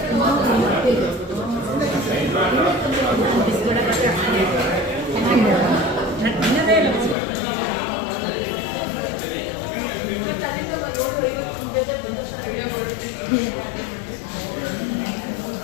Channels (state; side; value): drops out; right; at 7.2 s